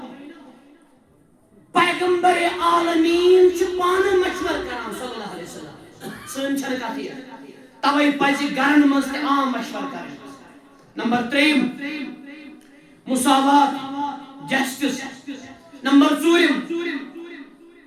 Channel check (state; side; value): identical; both; correlation 1.00